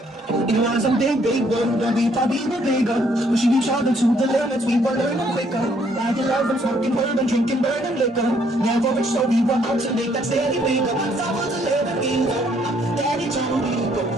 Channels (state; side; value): normal; both; correlation 0.67